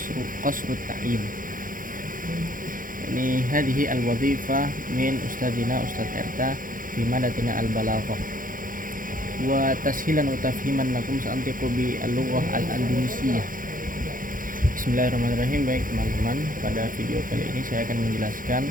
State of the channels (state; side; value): late; left; 0.40 ms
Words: at-ta'yin. Ini hadhihi al-wadhifah min ustadzina Ustadz Erta fi madatina al-balaghah wa tashilan wa tafhiman lakum sa'antiqu bi al-lughah al-andalusiyah. Bismillahirrahmanirrahim. Baik teman-teman, pada video kali ini saya akan menjelaskan